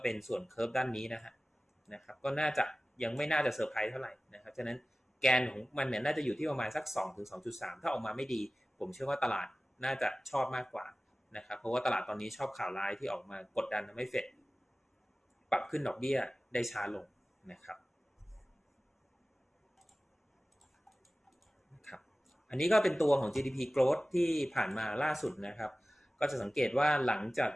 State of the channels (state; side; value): normal; both; correlation 0.97